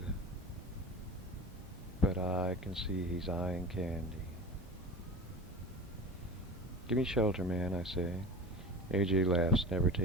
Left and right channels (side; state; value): both; normal; correlation 0.32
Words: but I can see he's eyeing Candy. Give me shelter, man, I say. AJ laughs, never